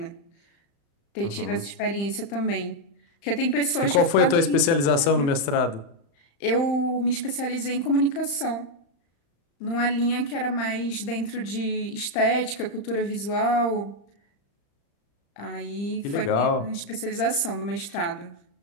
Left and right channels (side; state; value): right; late; 35 ms